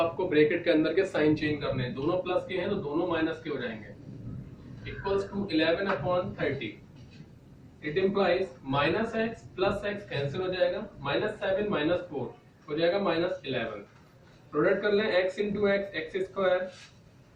ब्रैकेट के अंदर के साइन चेंज करने हैं। दोनों प्लस के हैं तो दोनों माइनस के हो जाएंगे। Equals to 11 upon 30। It implies minus X plus X cancel हो जाएगा, माइनस 7 माइनस 4 हो जाएगा माइनस 11। प्रोडक्ट कर लें x into x x square,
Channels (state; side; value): identical; both; correlation 1.00